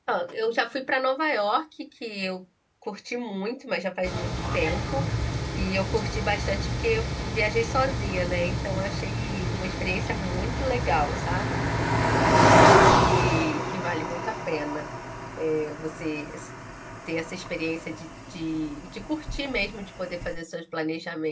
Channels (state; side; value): identical; both; correlation 1.00